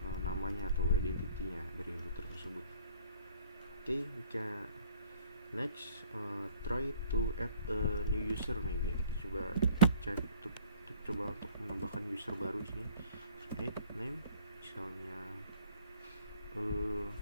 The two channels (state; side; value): inverted; both; correlation -0.54